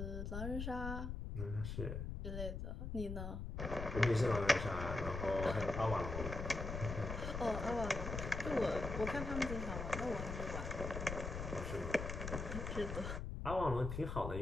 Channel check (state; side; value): noise; left; rumble, 4 dB below the sound